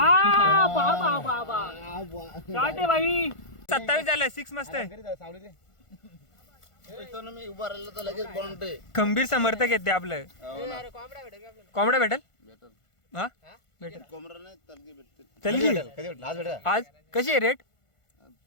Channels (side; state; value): right; late; 1.5 ms